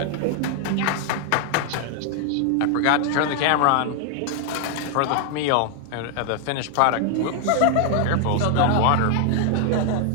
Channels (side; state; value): both; different; correlation 0.00